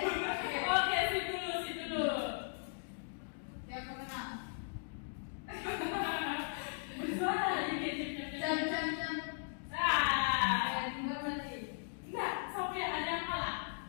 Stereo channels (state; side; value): silent; right; digital silence